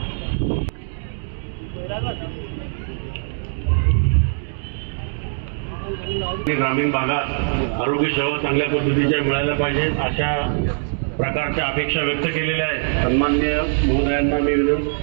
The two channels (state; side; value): silent; left; digital silence